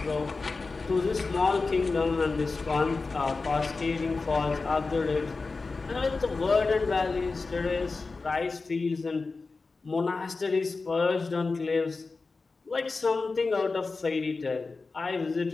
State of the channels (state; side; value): quieter; right; 4.0 dB